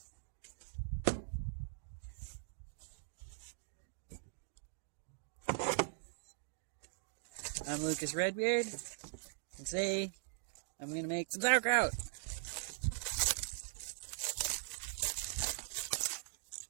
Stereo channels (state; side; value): silent; left; digital silence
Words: I'm Lucas Redbeard, and today I'm going to make some sauerkraut.